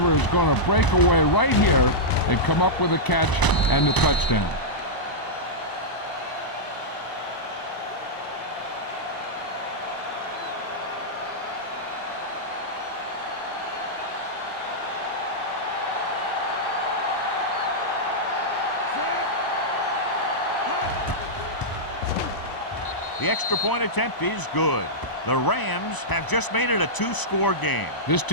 is going to break away right here and come up with a catch and the touchdown. The extra point attempt is good. The Rams have just made it a 2-score game. This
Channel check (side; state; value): right; late; 1.0 ms